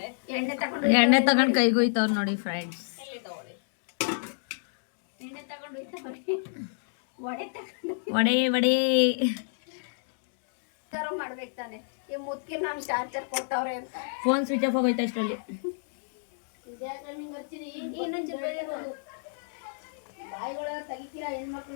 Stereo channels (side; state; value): right; silent; digital silence